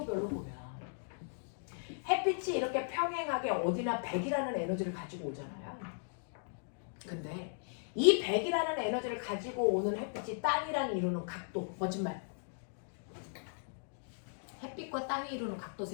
보면 햇빛이 이렇게 평행하게 어디나 100이라는 에너지를 가지고 오잖아요. 근데 이 100이라는 에너지를 가지고 오는 햇빛이 땅이랑 이루는 각도, 거짓말. 햇빛과 땅이 이루는 각도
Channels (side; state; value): right; silent; digital silence